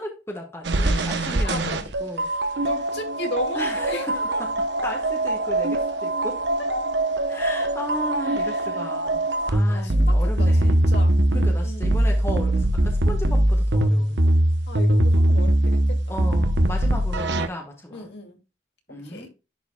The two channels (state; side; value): normal; both; correlation 0.64